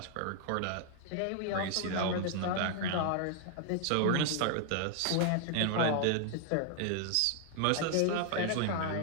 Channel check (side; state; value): both; different; correlation 0.00